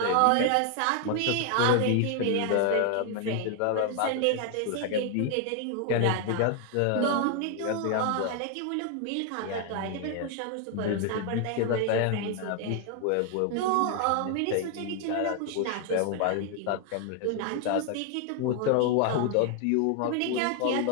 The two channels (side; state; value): both; different; correlation 0.00